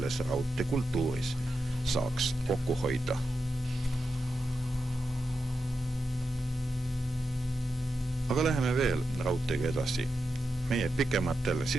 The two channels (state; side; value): normal; both; correlation 0.88